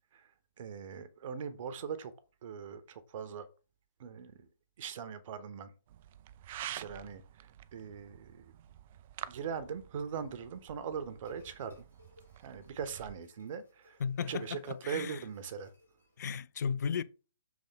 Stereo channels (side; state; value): both; inverted; correlation -0.52